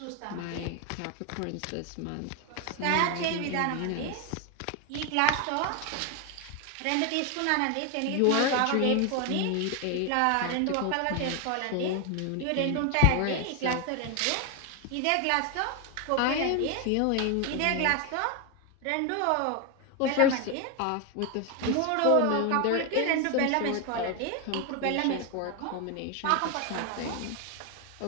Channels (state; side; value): different; both; correlation 0.01